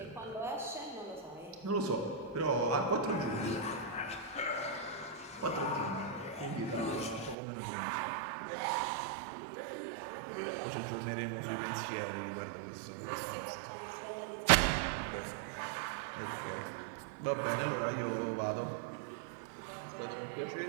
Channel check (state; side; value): drops out; left; at 7.4 s